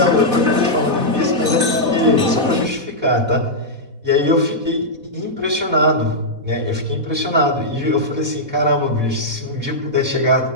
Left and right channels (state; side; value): late; left; 4.1 ms